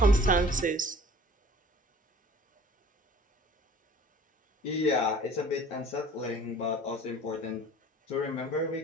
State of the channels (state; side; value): normal; both; correlation 0.48